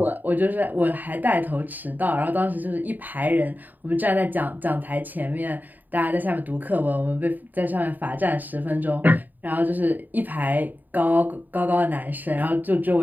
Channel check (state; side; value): late; left; 0.086 ms